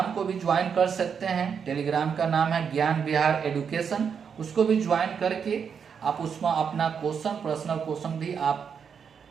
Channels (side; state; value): left; quieter; 6.8 dB